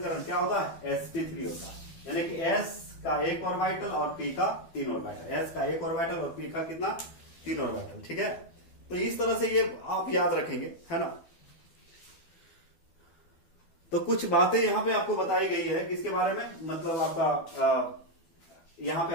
क्या होता है? sp3 होता है, यानी कि s का एक ऑर्बिटल और p का 3 ऑर्बिटल, s का एक ऑर्बिटल और p का कितना? 3 ऑर्बिटल। ठीक है, तो इस तरह से ये आप याद रखेंगे, है ना। तो कुछ बातें यहां पे आपको बताई गई है किसके बारे में, मतलब आपका यहां पे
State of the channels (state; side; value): late; right; 12 ms